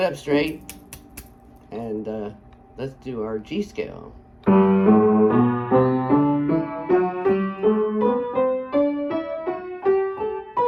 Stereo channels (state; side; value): identical; both; correlation 1.00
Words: up straight, and let's do our G scale.